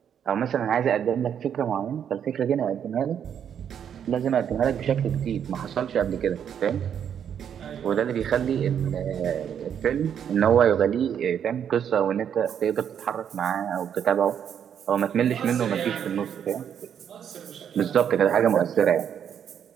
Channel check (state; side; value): quieter; left; 8.6 dB